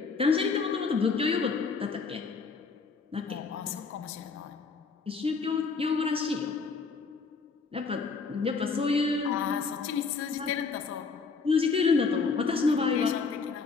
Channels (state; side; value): quieter; right; 4.8 dB